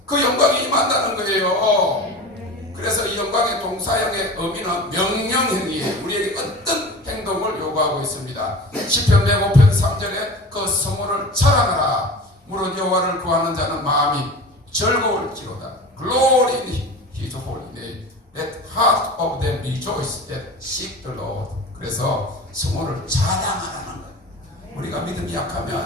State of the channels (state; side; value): normal; both; correlation 0.36